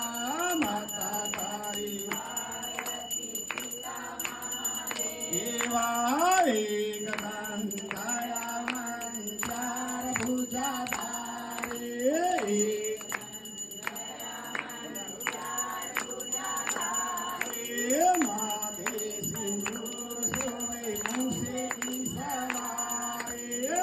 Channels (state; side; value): identical; both; correlation 1.00